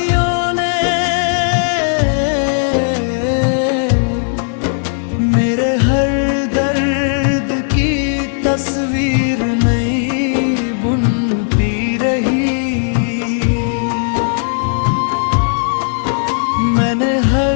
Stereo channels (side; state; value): right; silent; 63 dB below the other